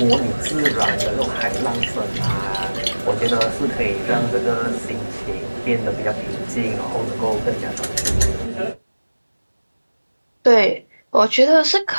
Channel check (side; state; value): both; inverted; correlation -1.00